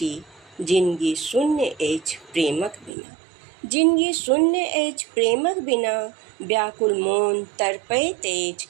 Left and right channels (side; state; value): left; drops out; at 2.9 s